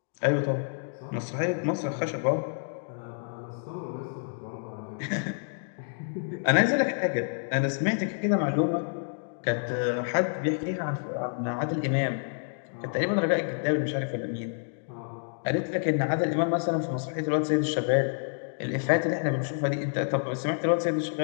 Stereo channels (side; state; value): right; silent; digital silence